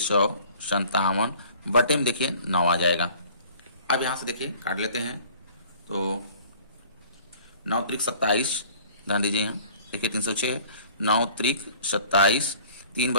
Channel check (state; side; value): inverted; both; correlation -0.50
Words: बटे में देखिए 9 आ जाएगा। अब यहाँ से देखिए काट लेते हैं, तो 9 त्रिक 27, ध्यान दीजिए यहाँ देखिए 306 9 त्रिक 27, 3